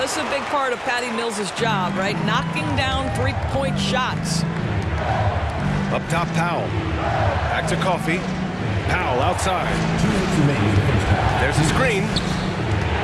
this is a big part of Patty Mills' job, right? Knocking down three-point shots. Up top, Powell. Back to Coffey. Powell outside. There's a screen.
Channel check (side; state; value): both; identical; correlation 1.00